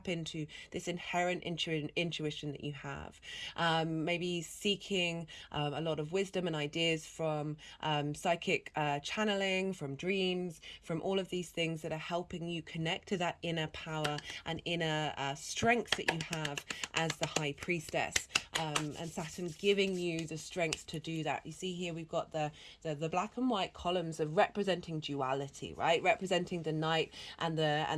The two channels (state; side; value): identical; both; correlation 1.00